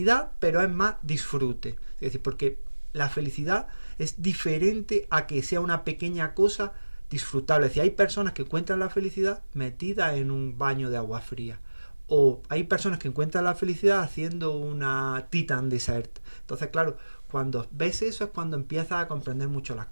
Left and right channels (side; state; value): both; inverted; correlation -1.00